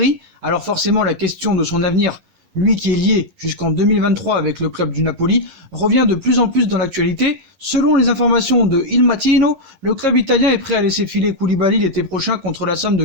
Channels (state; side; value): late; left; 11 ms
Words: alors forcément la question de son avenir, lui qui est lié jusqu'en 2023 avec le club du Napoli, revient de plus en plus dans l'actualité. Selon les informations de Il Mattino, le club italien est prêt à laisser filer Koulibaly l'été prochain contre la somme de